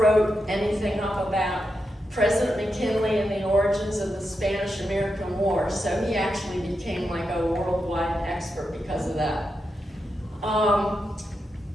anything up about President McKinley and the origins of the Spanish-American War. So he actually became like a worldwide expert because of that.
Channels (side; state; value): both; normal; correlation 0.87